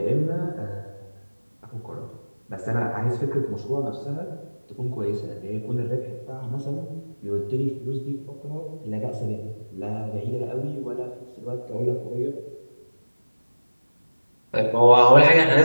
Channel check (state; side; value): inverted; both; correlation -1.00